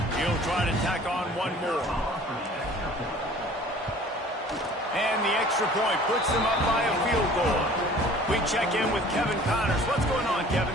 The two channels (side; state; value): both; normal; correlation 0.49